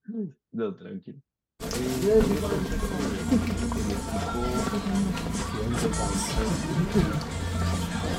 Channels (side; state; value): both; identical; correlation 1.00